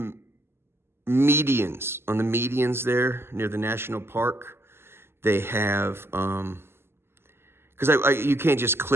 medians. On the medians there near the national park, they have, because you can't just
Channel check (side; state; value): left; late; 0.12 ms